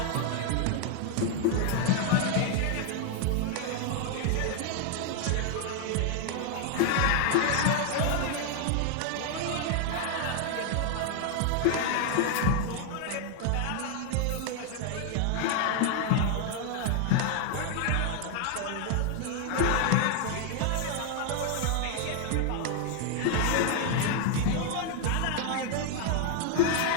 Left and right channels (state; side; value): different; both; correlation 0.00